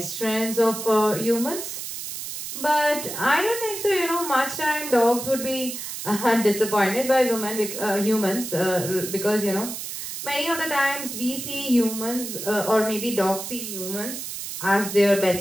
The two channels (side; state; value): right; noise; hiss, 7 dB below the sound